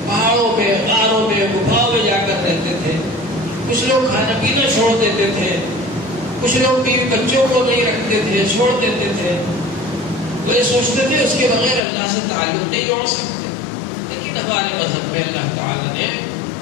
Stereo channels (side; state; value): right; drops out; at 11.8 s